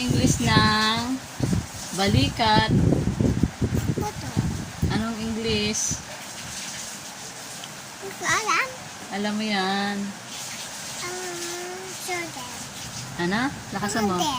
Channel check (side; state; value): both; identical; correlation 1.00